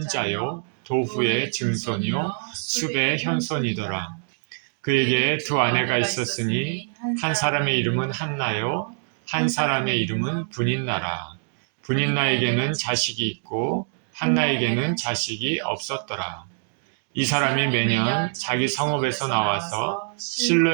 도후의 증손이요 숲의 현손이더라. 그에게 두 아내가 있었으니 한 사람의 이름은 한나요 한 사람의 이름은 브닌나라. 브닌나에게는 자식이 있고 한나에게는 자식이 없었더라. 이 사람이 매년 자기 성읍에서 나와서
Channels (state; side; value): silent; left; digital silence